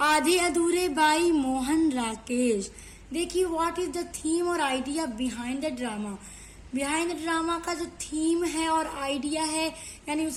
आधे अधूरे बाई मोहन राकेश। देखिए व्हाट इज द थीम और idea behind the drama. Behind the drama का जो थीम है और आइडिया है, यानी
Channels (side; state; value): both; identical; correlation 1.00